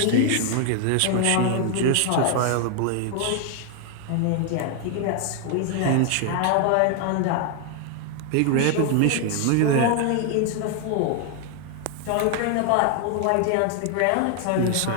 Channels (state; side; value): different; both; correlation 0.00